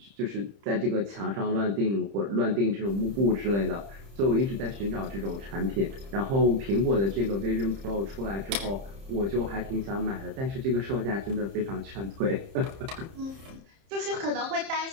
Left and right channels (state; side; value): late; left; 30 ms